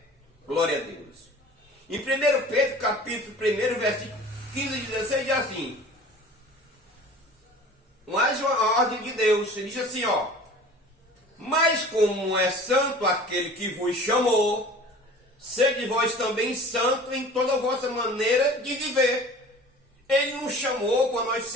Glória a Deus. Em 1 Pedro, capítulo 1, versículo 15 e 16, diz assim: mais uma ordem de Deus. Ele diz assim, ó: mas como é santo aquele que vos chamou, sede vós também santo em toda a vossa maneira de viver. Ele não chamou para nós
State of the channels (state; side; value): normal; both; correlation 0.43